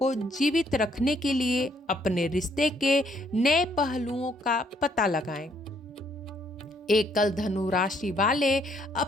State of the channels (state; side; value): normal; both; correlation 0.68